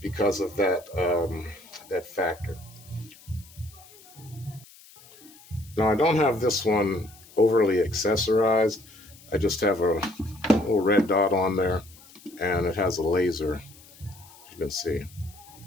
of that factor. Now, I don't have this one overly accessorized. I just have a little red dot on there, and it has a laser, as you can see.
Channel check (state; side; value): noise; left; hiss, 23 dB below the sound